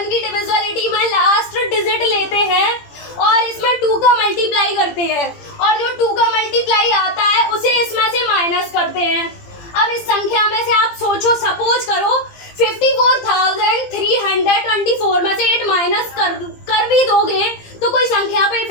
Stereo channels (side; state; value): right; late; 17 ms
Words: की डिविजिबिलिटी में लास्ट डिजिट लेते हैं और इसमें 2 का मल्टीप्लाई करते हैं, और जो 2 का मल्टीप्लाई आता है उसे इसमें से माइनस करते हैं। अब इस संख्या में से आप सोचो, सपोज करो 54,324 में से 8 माइनस कर भी दोगे तो कोई संख्या पे